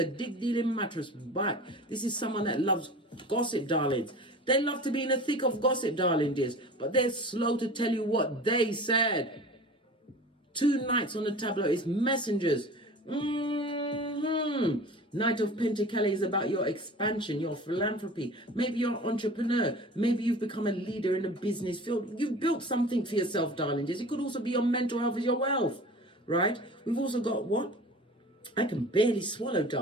dig-dealing mattress back. This is someone that loves gossip, darlings. They love to be in the thick of gossip, darling dears, but they're slow to tell you what they said. 2 knights on the tableau is messengers. Knight of Pentacles is about your expansion, your philanthropy. Maybe you're an entrepreneur. Maybe you've become a leader in the business field. You've built something for yourself, darling dears. It could also be your mental health as your wealth, right? We've also got what? I can barely swallow,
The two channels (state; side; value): normal; both; correlation 0.39